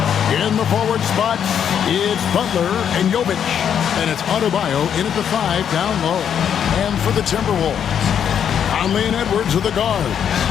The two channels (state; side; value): quieter; right; 8.5 dB